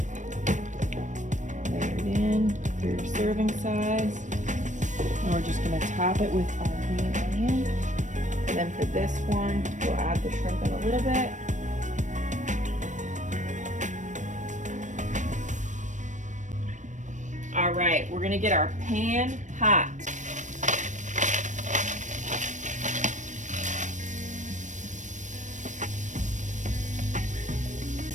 Layer it in for your serving size. And we're just gonna top it with our green onion. And then for this one, we'll add the shrimp in a little bit. All right, we're gonna get our pan hot.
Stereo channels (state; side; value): late; left; 0.35 ms